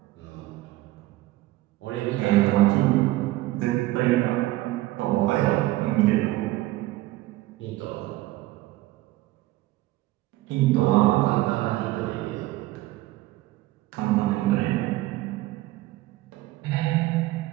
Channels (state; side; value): quieter; left; 17.4 dB